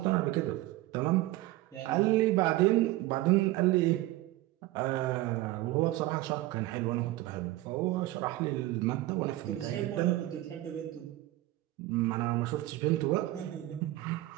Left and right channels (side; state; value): left; quieter; 17.3 dB